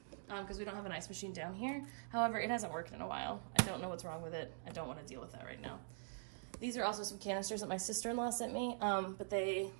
because we don't have an ice machine down here. However, it hasn't worked in a while. I don't know what's wrong with it. I don't want to deal with that right now. These are also some canisters that my sister-in-law sent me, but they,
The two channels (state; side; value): silent; left; digital silence